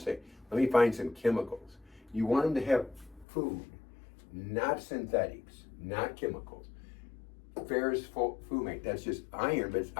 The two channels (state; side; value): drops out; right; at 3.2 s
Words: let me find some chemicals. You want them to have food, not synthetics, not chemicals. Ferrous fumate, that's just iron, but it's